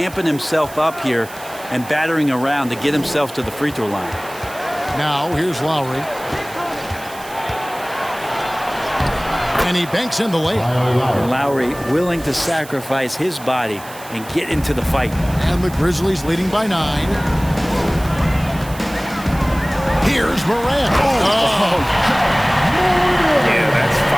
himself up here and battering around to get himself to the free throw line. Now here's Lowry. And he banks in the layup. And Lowry willing to sacrifice his body and get into the fight. And the Grizzlies leading by 9. Here's Morant. Yeah, that's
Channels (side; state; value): right; noise; hiss, 17 dB below the sound